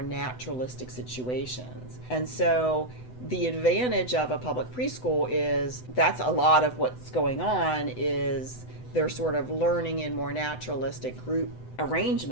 naturalistic situations. And so the advantage of a public preschool is that's a lot of what's going on is they're sort of learning in more naturalistic group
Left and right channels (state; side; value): late; right; 8.0 ms